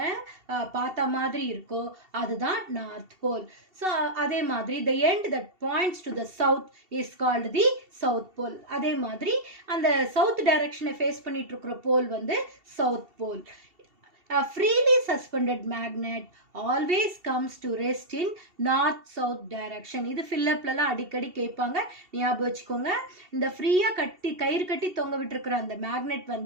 பார்த்த மாதிரி இருக்கோ அதுதான் நார்த் போல். ஸோ அதே மாதிரி the end that points to the south is called the south pole. அதே மாதிரி அந்த சவுத் டைரக்ஷனை ஃபேஸ் பண்ணிட்டு இருக்கிற போல் வந்து south pole. A freely suspended magnet always comes to rest in north south direction. இது ஃபில்லப்லலாம் அடிக்கடி கேட்பாங்க, ஞாபகம் வச்சுக்கோங்க. இந்த ஃப்ரீயாக கயிறு கட்டி தொங்க விட்டுருக்குற அந்த மேக்னெட்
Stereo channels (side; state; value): left; late; 2.7 ms